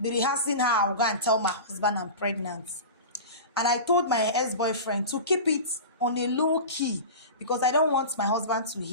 rehearsing how I'll go and tell my husband I'm pregnant. And I told my ex-boyfriend to keep it on a low key because I don't want my husband to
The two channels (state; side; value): inverted; both; correlation -0.30